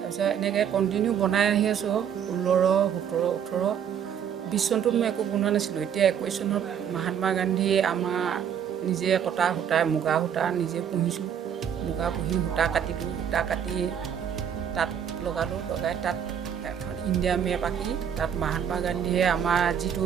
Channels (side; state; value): left; quieter; 8.5 dB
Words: এনেকৈ কণ্টিনিউ বনাই আহি আছোঁ। 16, 17, 18, 20 চনটোত মই একো বনোৱা নাছিলোঁ। এতিয়া 21 চনত মহাত্মা গান্ধী আমাৰ নিজে কটা সূতা, মুগা সূতা নিজে পুহিছোঁ। মুগা পুহি সূতা কাটিলোঁ, সূতা কাটি তাত লগালোঁ, লগাই তাত এখন ইণ্ডিয়া মেপ আঁকি তাত মহাত্মা গান্ধীয়ে আমাৰ